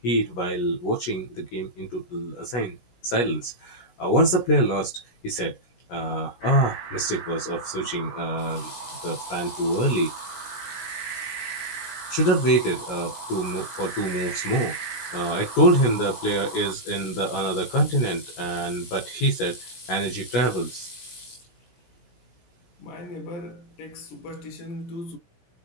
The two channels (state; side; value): late; right; 16 ms